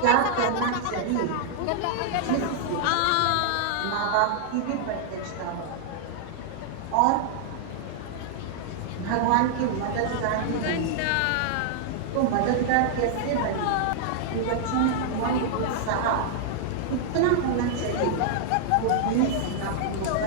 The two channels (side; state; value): both; different; correlation -0.01